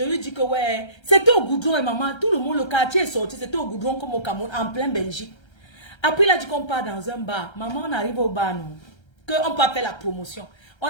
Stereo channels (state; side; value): late; right; 1.3 ms